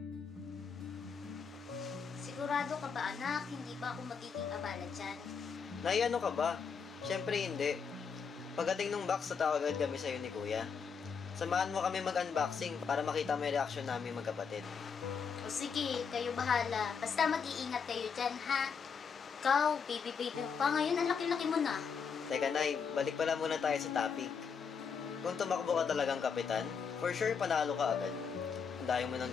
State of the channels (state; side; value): quieter; right; 6.2 dB